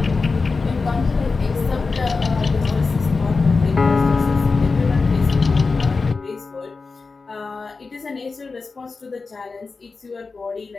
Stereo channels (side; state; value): right; quieter; 4.2 dB